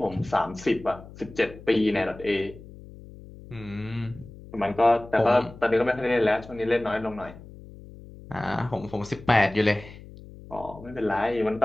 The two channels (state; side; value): noise; left; hum, 17 dB below the sound